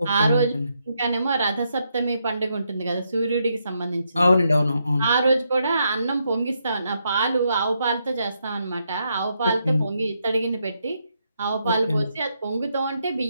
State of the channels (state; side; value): inverted; both; correlation -0.79